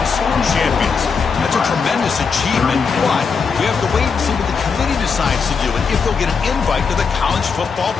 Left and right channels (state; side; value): quieter; right; 5.6 dB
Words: champions. That's a tremendous achievement, but we have to wait and see what the committee decides to do and if they'll get an invite to the college football